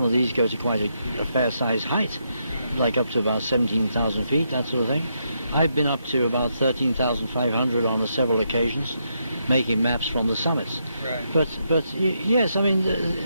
of these go to quite a fair-sized height, like up to about 17,000 feet, that sort of thing. I've been up to about 13,500 on several occasions, making maps from the summits. Right. But yes, I mean,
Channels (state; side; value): inverted; both; correlation -0.80